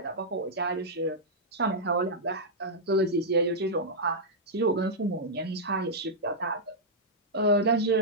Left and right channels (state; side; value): normal; both; correlation -0.09